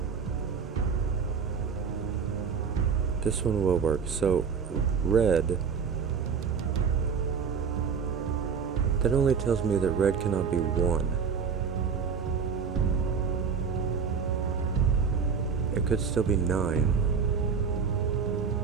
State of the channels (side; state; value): left; quieter; 6.2 dB